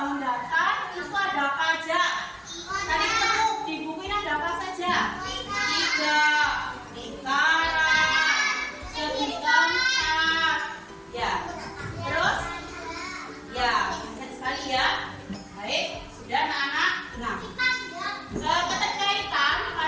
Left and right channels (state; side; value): identical; both; correlation 1.00